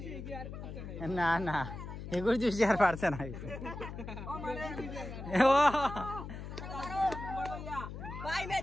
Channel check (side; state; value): left; noise; hum, 9 dB below the sound